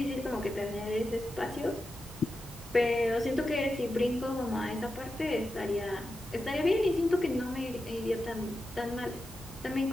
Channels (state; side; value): normal; both; correlation 0.90